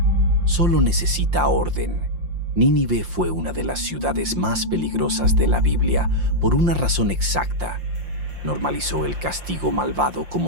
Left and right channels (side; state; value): left; late; 5.7 ms